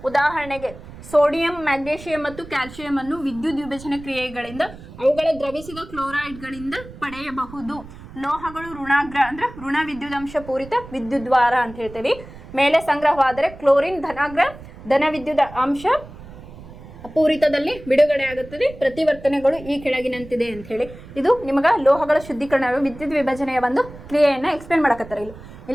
ಉದಾಹರಣೆಗೆ ಸೋಡಿಯಂ, ಮ್ಯಾಗ್ನೀಷಿಯಂ ಮತ್ತು ಕ್ಯಾಲ್ಸಿಯಂ ಅನ್ನು ವಿದ್ಯುತ್ ವಿಭಜನೆ ಕ್ರಿಯೆಗಳಿಂದ ಅವುಗಳ ದ್ರವಿಸಿದ ಕ್ಲೋರೈಡ್ಗಳಿಂದ ಪಡೆಯಬಹುದು. ಲೋಹಗಳು ಋಣಾಗ್ರ ಅಂದ್ರೆ ಋಣ ವಿದ್ಯುದಾಂಶ ಪೂರಿತ ವಿದ್ಯುದ್ವಾರ ಅಂತ ಹೇಳ್ತೇವೆ. ಮೇಲೆ ಸಂಗ್ರಹವಾದರೆ ಕ್ಲೋರಿನ್ ಧನಾಗ್ರ ಧನ ವಿದ್ಯುತ್ ಅಂಶ ಪೂರಿತದಲ್ಲಿ ಬಿಡುಗಡೆ ಆಗುತ್ತದೆ. ಪ್ರತಿವರ್ತನೆಗಳು ಈ ಕೆಳಗಿನಂತಿದೆ ಅಂತ ಹೇಳಿ. ಇದು ನಿಮಗ ಲೋಹಗಳ ಶುದ್ಧೀಕರಣ ವಿದ್ಯುತ್ ವಿಭಜನೆಯ ಒಂದು ಕ್ರಿಯೆಯನ್ನ ಎಕ್ಸ್ಪ್ಲೇನ್ ಮಾಡಕತ್ತಾರೆ.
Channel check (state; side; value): noise; right; rumble, 16 dB below the sound